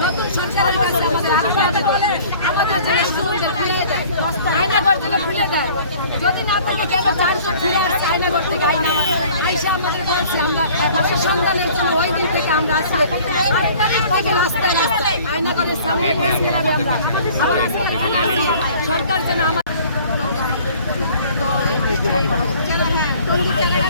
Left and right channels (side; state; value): both; inverted; correlation -0.50